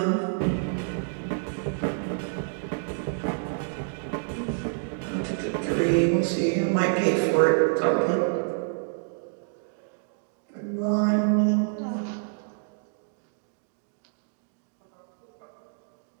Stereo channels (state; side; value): silent; left; digital silence